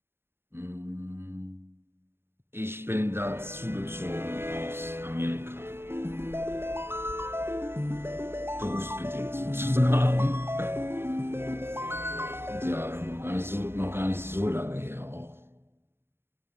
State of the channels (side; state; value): left; late; 0.11 ms